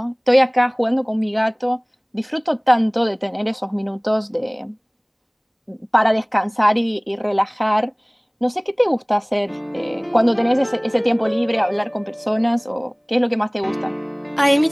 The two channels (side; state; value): both; identical; correlation 1.00